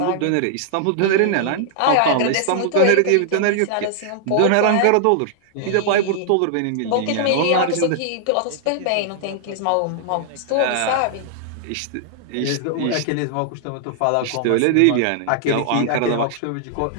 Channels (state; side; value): different; both; correlation -0.01